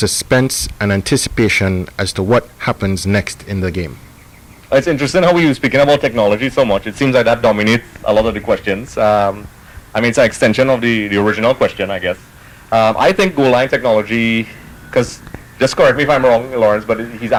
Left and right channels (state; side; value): identical; both; correlation 1.00